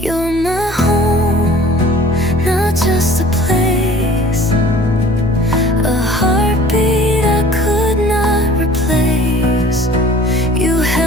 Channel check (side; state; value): both; normal; correlation 0.48